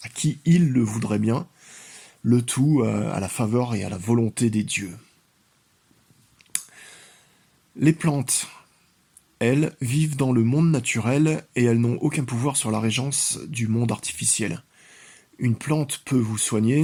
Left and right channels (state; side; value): identical; both; correlation 1.00